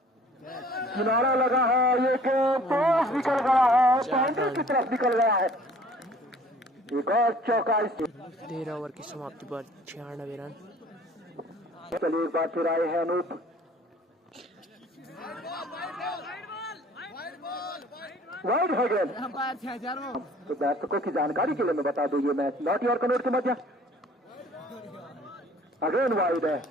किनारा लगा है। ये टॉस निकल गया है बाउंड्री की तरफ निकल गया है। एक और चौका। 13 ओवर की समाप्ति पर 96 रन। चलिए एक बार फिर आए हैं अनूप। वाइड है गेंद। तो दर्शकों की जानकारी के लिए मैं बता दूं ये मैच नॉटी और कनौर के मध्य अगेन वाइड है।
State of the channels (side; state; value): both; normal; correlation 0.52